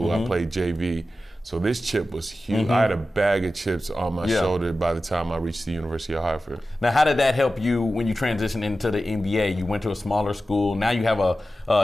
I played JV. So this chip was huge. I had a bag of chips on my shoulder by the time I reached the University of Hartford. Now, how did that help you when you transitioned into the NBA? You went to a smaller school. Now you have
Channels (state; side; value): normal; both; correlation 0.94